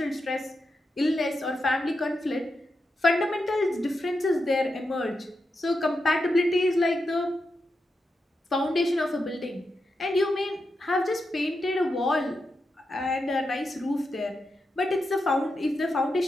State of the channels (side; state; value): both; normal; correlation 0.87